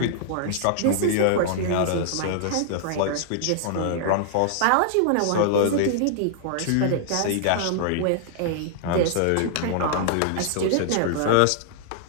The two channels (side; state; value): both; different; correlation -0.01